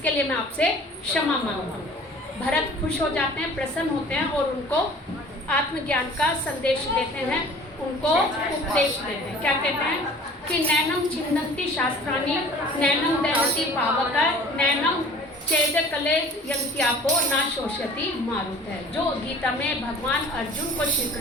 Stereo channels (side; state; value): both; normal; correlation 0.47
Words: लिए मैं आपसे क्षमा मांगता हूँ। भरत खुश हो जाते हैं, प्रसन्न होते हैं और उनको आत्मज्ञान का संदेश देते हैं, उनको उपदेश देते हैं। क्या कहते हैं कि नैनम छिन्दन्ति शास्त्राणि नैनम दहति पावक नैनम चेद कले यंत्यापो ना शोषयति मारुत है। जो गीता में भगवान अर्जुन को श्री